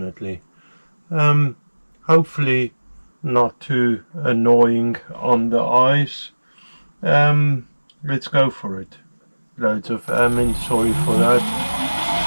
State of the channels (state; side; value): inverted; both; correlation -1.00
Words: Hopefully not too annoying on the eyes. Let's go for it. Loads of sorry for that.